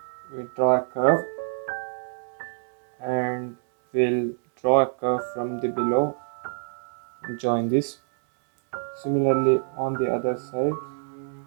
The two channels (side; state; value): left; silent; digital silence